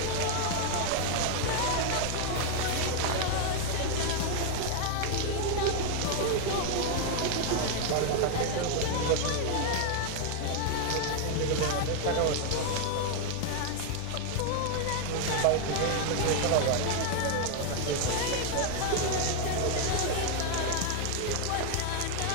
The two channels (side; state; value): both; different; correlation 0.00